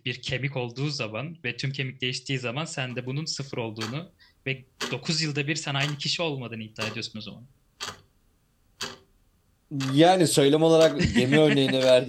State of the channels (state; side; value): identical; both; correlation 1.00